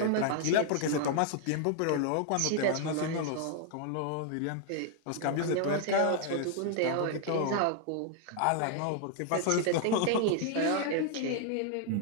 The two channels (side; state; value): both; different; correlation 0.00